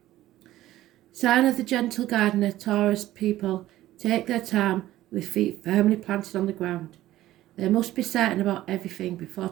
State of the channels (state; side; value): quieter; left; 14.9 dB